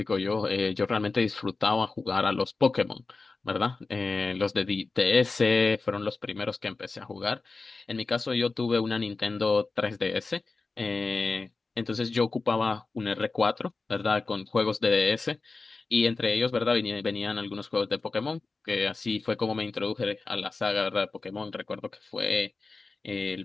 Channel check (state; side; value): quieter; right; 3.9 dB